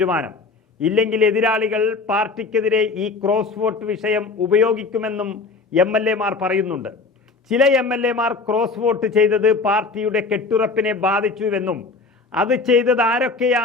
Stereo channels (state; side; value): quieter; right; 4.1 dB